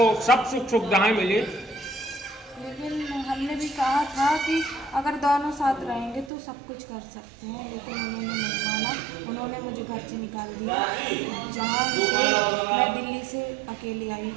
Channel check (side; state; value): left; drops out; at 6.3 s